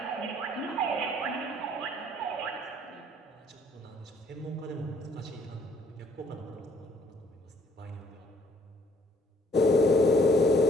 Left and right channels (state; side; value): normal; both; correlation 0.61